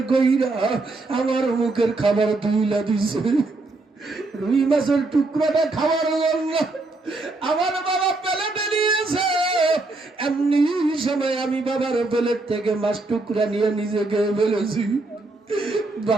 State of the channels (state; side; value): quieter; left; 3.2 dB